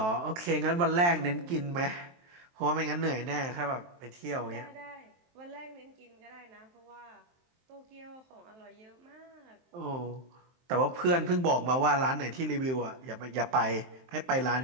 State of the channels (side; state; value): left; late; 23 ms